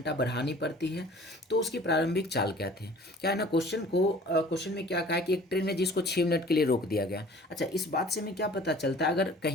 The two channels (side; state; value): both; normal; correlation 0.48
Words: बढ़ानी पड़ती है। तो उसकी प्रारंभिक चाल क्या थी। क्या है ना, क्वेश्चन में क्या कहा है कि एक ट्रेन है जिसको 6 मिनट के लिए रोक दिया गया। अच्छा, इस बात से हमें क्या पता चलता है, अगर